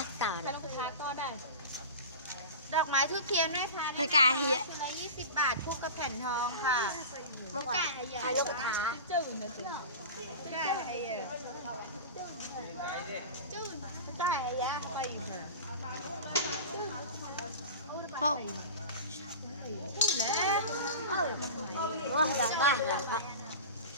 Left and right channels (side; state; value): both; inverted; correlation -0.31